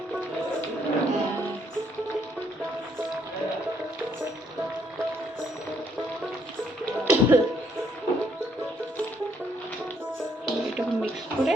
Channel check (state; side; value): normal; both; correlation 0.69